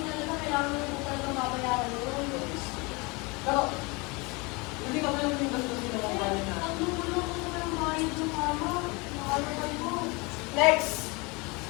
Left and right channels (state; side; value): quieter; right; 27.2 dB